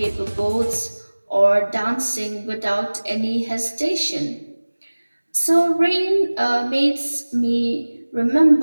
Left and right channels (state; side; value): inverted; both; correlation -1.00